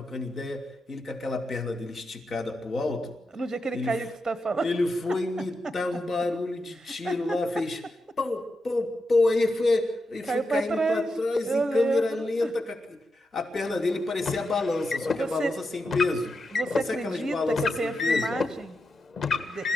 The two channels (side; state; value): both; normal; correlation 0.87